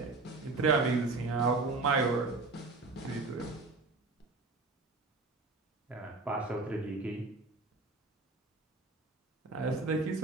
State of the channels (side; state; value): left; quieter; 3.6 dB